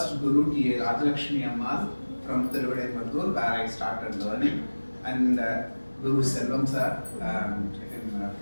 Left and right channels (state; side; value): inverted; both; correlation -1.00